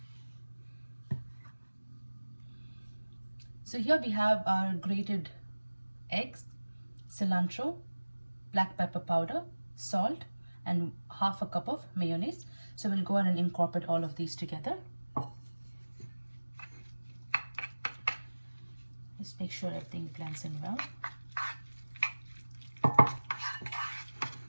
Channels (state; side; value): inverted; both; correlation -1.00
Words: so here we have our grated eggs, cilantro, black pepper powder, salt, and half a cup of mayonnaise. So we'll go ahead and incorporate all of these together. Just make sure everything blends in well.